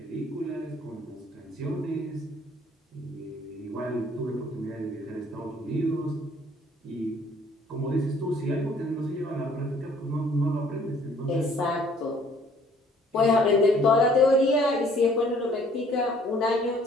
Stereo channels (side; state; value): both; normal; correlation 0.58